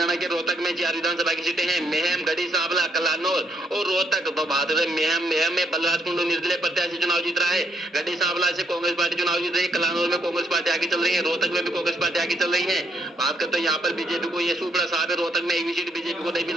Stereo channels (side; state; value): both; normal; correlation 0.73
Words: के रोहतक में 4 विधानसभा की सीटें हैं। मेहम, गढ़ी सांवला, कलानौर और रोहतक। तो बात है मेहम में बलराज कुंडू निर्दलीय प्रत्याशी चुनाव जीत रहा है, गढ़ी सांवला से कांग्रेस पार्टी चुनाव जीत रही है, कलानौर में कांग्रेस पार्टी आगे चल रही है, रोहतक में भी कांग्रेस पार्टी आगे चल रही है। बात करते हैं यहाँ पर बीजेपी को ये सूपड़ा साहब है, रोहतक में 1 भी सीट बीजेपी को नहीं मिल